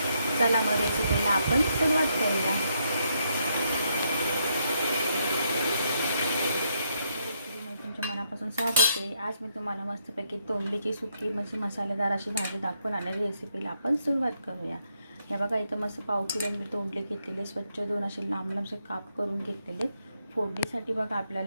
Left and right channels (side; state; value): both; inverted; correlation -0.77